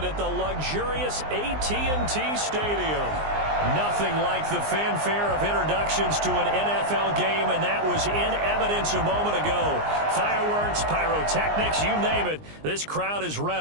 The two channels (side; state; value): left; late; 19 ms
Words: at the luxurious AT&T Stadium. Nothing like the fanfare of introductions to an NFL game, and that was in evidence a moment ago. Fireworks, pyrotechnics, you name it. This crowd is